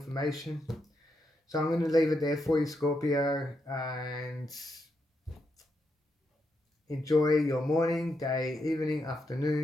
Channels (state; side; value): normal; both; correlation 0.82